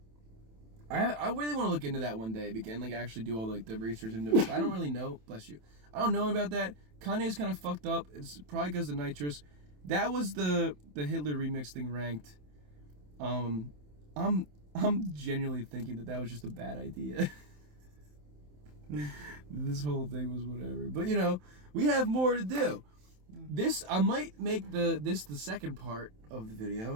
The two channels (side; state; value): left; late; 27 ms